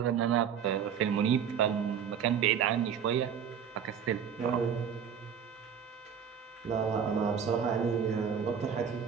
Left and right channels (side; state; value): left; quieter; 7.7 dB